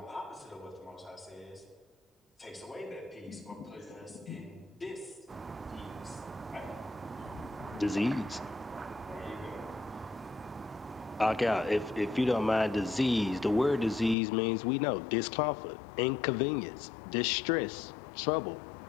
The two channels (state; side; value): drops out; right; at 14.2 s